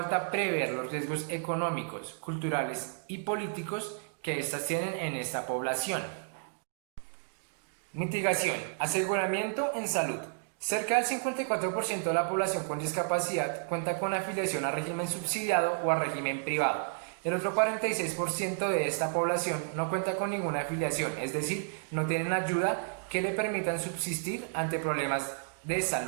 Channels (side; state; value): left; silent; digital silence